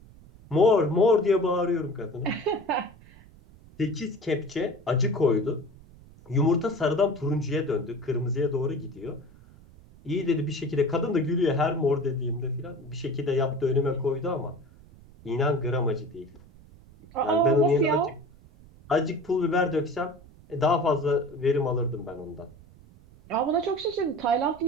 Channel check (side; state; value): right; noise; rumble, 23 dB below the sound